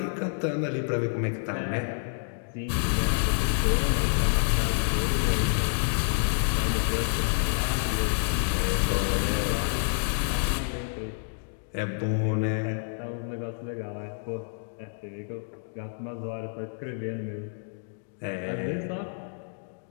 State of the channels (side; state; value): right; silent; digital silence